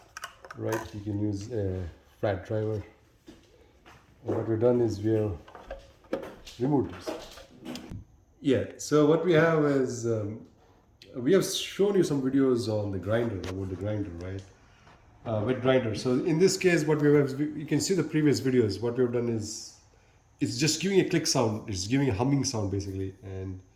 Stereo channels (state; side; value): identical; both; correlation 1.00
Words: right? You can use a flat driver. And what we've done is we have removed this. Yeah, so what we have is we have shown you some videos on the grinder, about the grinder, right? Wet grinder. So in this case, what we have, you can see the previous videos. What we have done is it's just giving a click sound. It's giving a humming sound basically. And